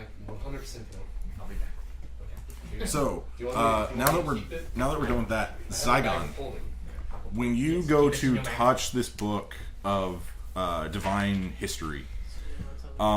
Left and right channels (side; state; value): both; identical; correlation 1.00